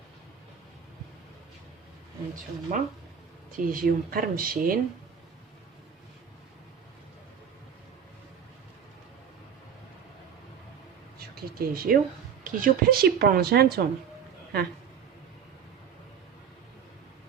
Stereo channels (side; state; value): left; quieter; 7.5 dB